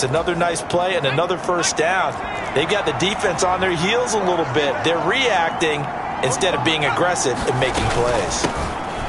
another nice play and another first down. They've got the defense on their heels a little bit. They're reacting instead of being aggressive and making plays.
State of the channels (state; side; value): identical; both; correlation 1.00